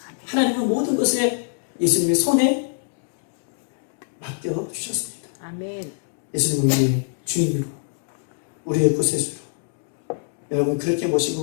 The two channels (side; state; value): right; silent; digital silence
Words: 하나님은 모든 것에 예수님의 손에 맡겨주셨습니다. 아멘. 예수님은 우리의 주인으로 우리의 구세주로 여러분 그렇게